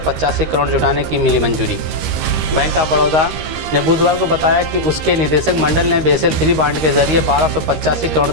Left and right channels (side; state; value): left; late; 13 ms